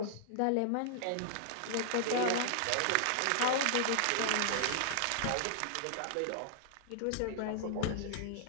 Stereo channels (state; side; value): different; both; correlation 0.00